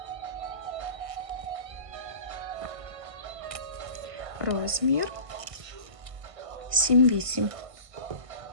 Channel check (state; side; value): late; left; 1.5 ms